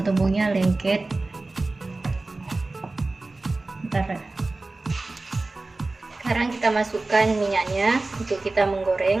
lengket. Bentar. Sekarang kita masukkan minyaknya untuk kita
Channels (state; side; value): quieter; left; 3.2 dB